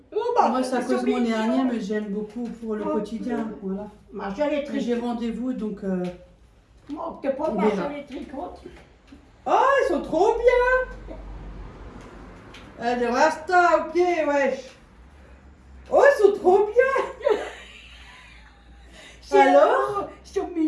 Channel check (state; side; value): identical; both; correlation 1.00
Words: Oh, bah, Moi, c'est à ils cause sont de mon mignons. hernie, mais j'aime beaucoup pour le Oh, quotidien. Voilà. Moi, j'ai les Mais tricots. j'ai rendez-vous, donc... Moi, t'es pas On mal verra. sur les tricots. Oh, ils sont trop bien. Allez, Rasta, ok, wesh. Oh, ils sont trop bien. Alors? Ils sont